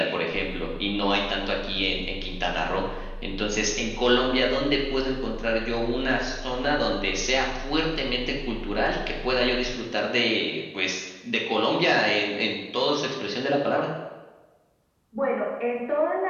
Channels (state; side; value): identical; both; correlation 1.00